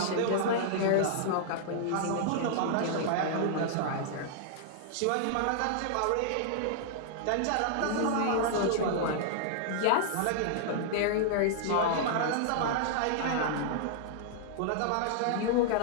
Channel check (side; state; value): both; different; correlation -0.01